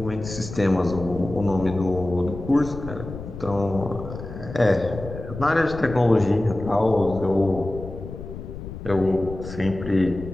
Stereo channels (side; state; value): left; noise; rumble, 11 dB below the sound